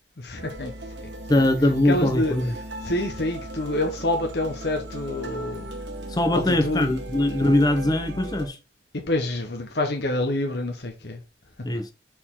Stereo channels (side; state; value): both; normal; correlation 0.63